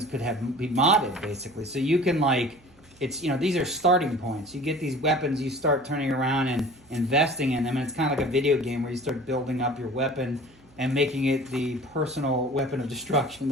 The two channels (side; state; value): right; noise; hum, 29 dB below the sound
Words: could be modded, basically. So you can, like, it's, you know, these are starting points. You get these weapons, you start turning around and investing in them, and it's kind of like a video game where you start building up your weapon and making it the personal weapon of destruction